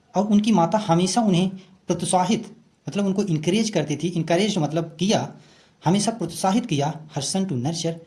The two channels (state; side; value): identical; both; correlation 1.00